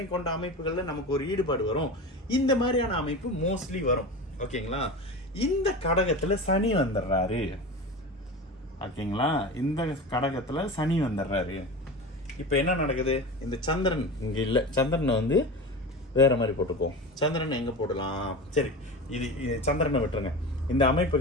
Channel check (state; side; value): normal; both; correlation 0.29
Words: கொண்ட அமைப்புகள்ல நமக்கு ஒரு ஈடுபாடு வரும். இந்த மாதிரியான அமைப்பு மோஸ்ட்லி வரும். ஓகேங்களா? இந்த கடகத்துல சனி வந்துடுறாரு. ஓகேங்களா? இந்த கடகத்துல சனி வந்துடுறாரு. இப்ப என்ன நடக்குது? இந்த சந்திரன் இங்க இல்ல, சந்திரனை வந்து வேற மாதிரி போட்டுக்குவோம். சந்திரன் எங்க போடலாம்? சரி, இது சந்திரனை விட்டுருங்க. இந்த